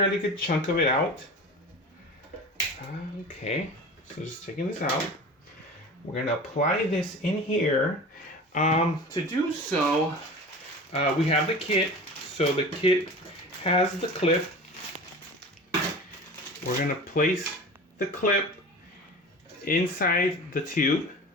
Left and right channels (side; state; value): both; normal; correlation 0.35